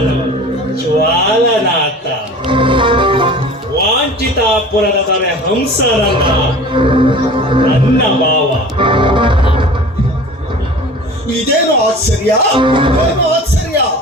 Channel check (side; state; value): both; normal; correlation 0.41